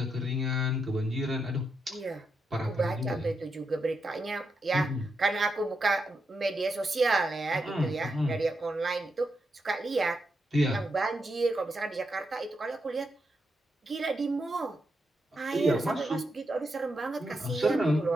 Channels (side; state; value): both; normal; correlation 0.84